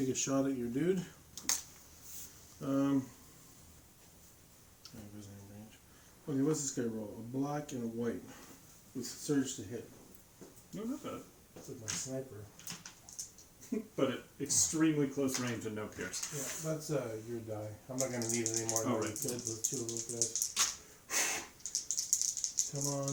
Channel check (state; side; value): identical; both; correlation 1.00